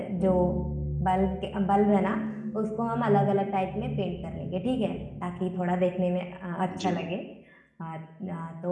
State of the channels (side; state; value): both; identical; correlation 1.00